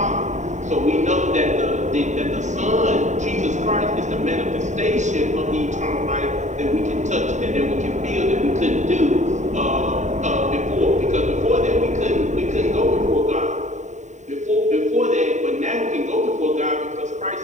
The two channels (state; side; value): late; left; 0.34 ms